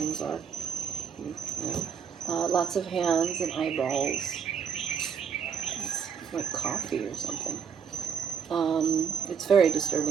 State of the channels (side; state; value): left; quieter; 7.0 dB